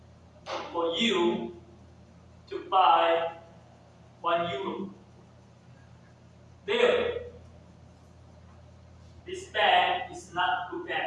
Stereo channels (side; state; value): both; identical; correlation 1.00